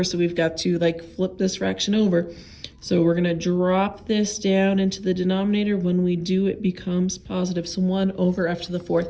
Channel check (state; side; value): identical; both; correlation 1.00